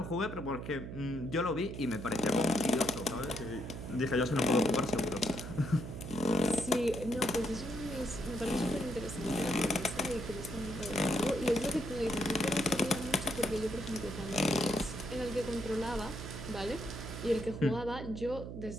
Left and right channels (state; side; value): noise; right; hum, 8 dB below the sound